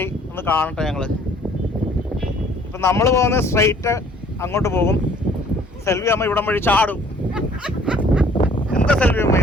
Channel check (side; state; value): both; normal; correlation 0.57